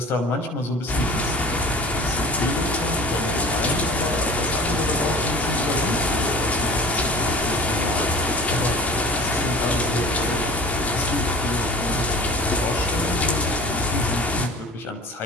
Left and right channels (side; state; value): both; normal; correlation 0.41